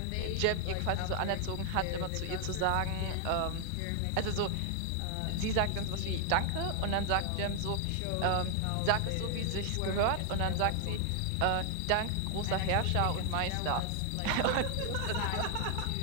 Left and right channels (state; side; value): different; both; correlation 0.00